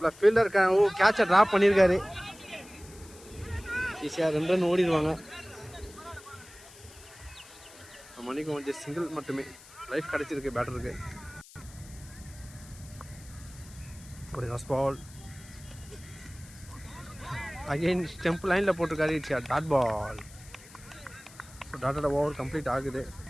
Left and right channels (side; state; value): left; noise; hiss, 20 dB below the sound